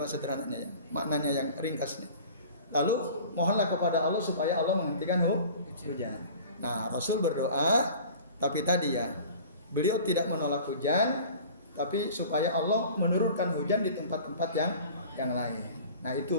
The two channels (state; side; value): inverted; both; correlation -0.43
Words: sederhananya ya, maknanya yang ringkasnya. Lalu mohonlah kepada Allah supaya Allah menghentikan hujan. Nah Rasul berdoa, tapi tadi ya beliau tidak menolak hujan, tapi supaya Allah menurunkan hujan di tempat-tempat yang lain. Nah